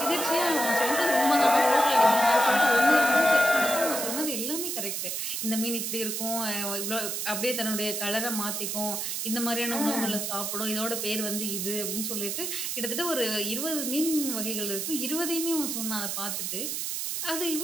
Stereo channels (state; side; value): noise; right; hiss, 2 dB below the sound